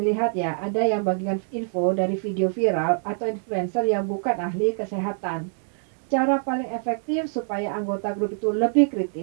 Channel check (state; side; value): silent; left; digital silence